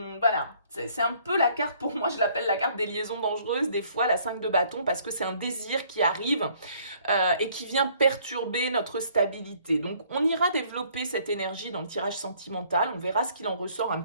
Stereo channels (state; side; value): inverted; both; correlation -0.61